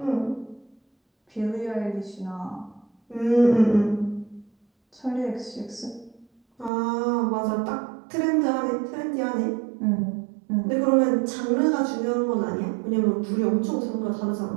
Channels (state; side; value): drops out; left; at 6.7 s